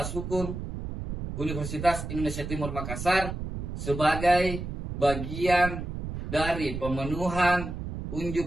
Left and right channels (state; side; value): noise; right; rumble, 6 dB below the sound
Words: Hukum Universitas Indonesia Timur Makassar sebagai bagian dari pemenuhan